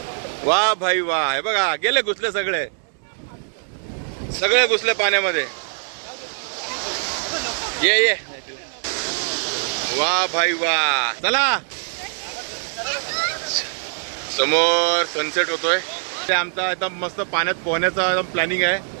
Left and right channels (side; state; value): left; silent; 63 dB below the other